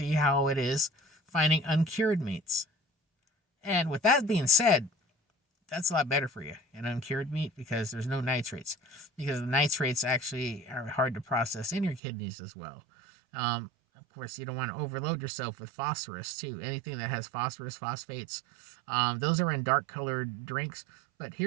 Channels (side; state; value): left; drops out; at 12.0 s